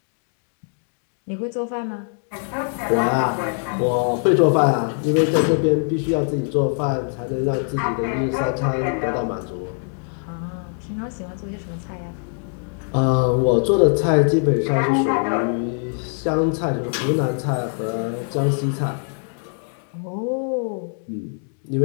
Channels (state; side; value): silent; right; 57 dB below the other